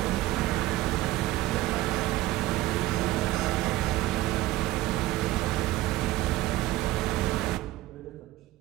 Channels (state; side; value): quieter; left; 16.6 dB